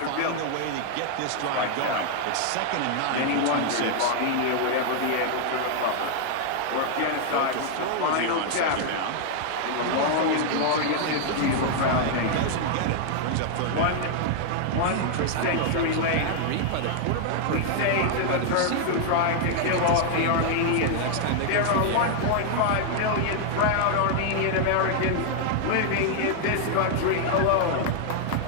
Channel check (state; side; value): different; both; correlation 0.00